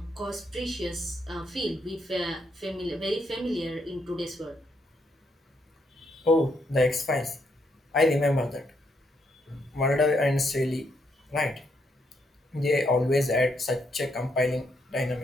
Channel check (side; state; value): both; normal; correlation 0.76